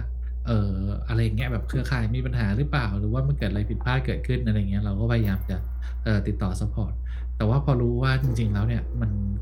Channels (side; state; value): both; identical; correlation 1.00